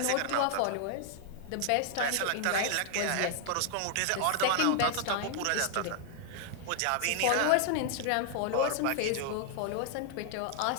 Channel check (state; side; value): different; both; correlation 0.00